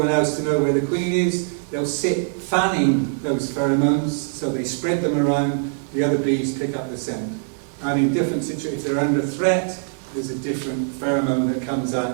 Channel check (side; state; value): left; silent; 64 dB below the other